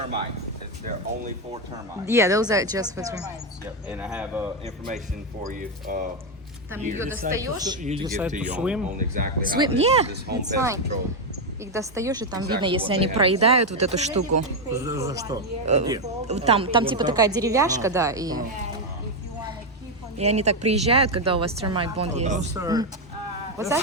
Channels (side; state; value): both; normal; correlation 0.05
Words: They're only for termites. Yeah, those are just for. Termites. Yep. And I have information for you. Там You ее достаешь. You to give decide to to you swim? on exactly how Swim, this, yeah, this home it's pest fine. control. Их достаешь, и там Exactly видно, если what они they have. проедают вот эту штуку. За что? Там типа такая деревяшка, да, и And if you want to keep on и они так приезжают, когда у вас termite bond есть. Those are What's